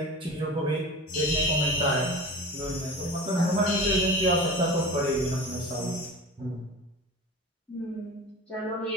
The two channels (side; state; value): both; normal; correlation 0.33